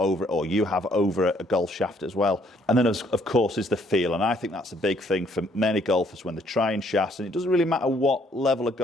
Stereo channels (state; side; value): normal; both; correlation 0.66